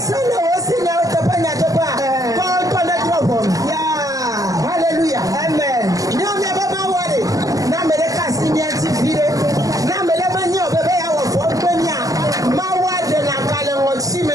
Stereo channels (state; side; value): late; left; 0.17 ms